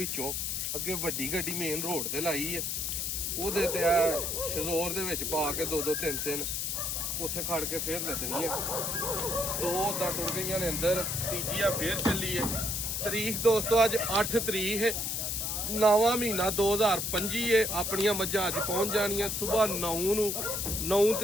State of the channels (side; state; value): left; noise; hiss, 1 dB below the sound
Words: ਅੱਗੇ ਵੱਡੀ ਗੱਡੀ ਮੇਨ ਰੋਡ ਤੇ ਲਾਈ ਹੈ। ਉਹਦੇ ਤੇ ਆ ਸ਼ਜ਼ੋਰ ਦੇ ਵਿੱਚ ਪਾ ਕੇ 2-2 3-3 ਉੱਥੇ ਖੜ ਕੇ ਫੇਰ ਲੱਦਣੀਆਂ। 2 ਤਾਂ ਟੁੱਟ ਗਈਆਂ ਨੇ ਅੰਦਰ, ਤੀਜੀ ਆ ਫੇਰ ਚੱਲੀ ਹੈ। ਤਰੀਕ ਦੋਸਤੋ ਅੱਜ 8 ਤਰੀਕ ਹੈ, 9ਵਾਂ ਮਹੀਨਾ 2025 ਹੈ। ਆਪਣੀਆਂ ਮੱਝਾਂ ਅੱਜ ਪਹੁੰਚ ਜਾਣੀਆਂ ਸਵੇਰ 9 ਨੂੰ। 9